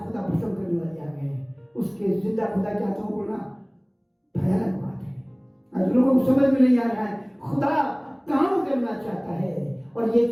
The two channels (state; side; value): identical; both; correlation 1.00